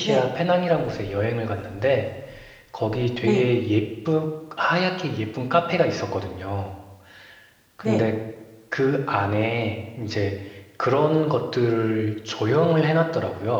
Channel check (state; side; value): identical; both; correlation 1.00